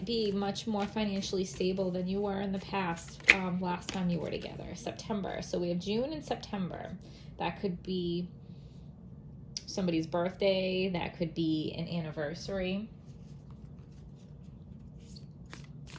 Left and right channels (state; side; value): identical; both; correlation 1.00